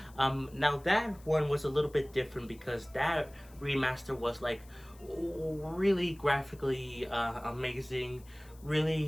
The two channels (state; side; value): noise; left; hiss, 26 dB below the sound